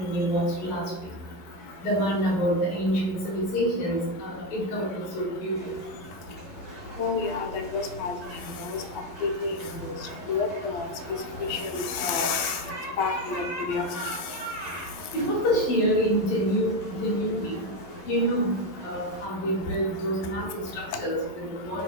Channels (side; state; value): right; late; 12 ms